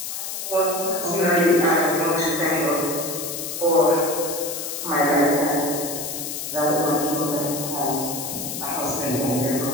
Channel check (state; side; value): noise; left; hiss, 6 dB below the sound